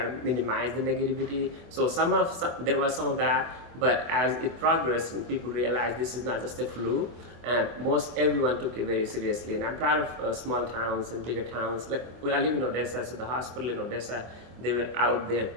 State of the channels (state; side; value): late; left; 24 ms